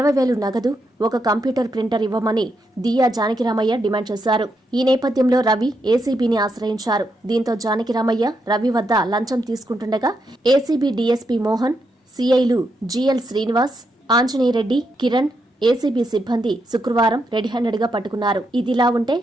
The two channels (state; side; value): normal; both; correlation 0.82